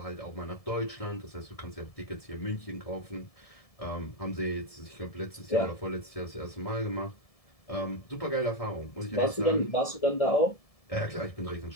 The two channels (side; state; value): right; late; 1.7 ms